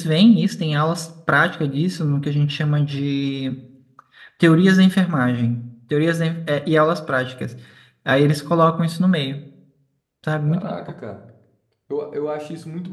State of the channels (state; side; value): identical; both; correlation 1.00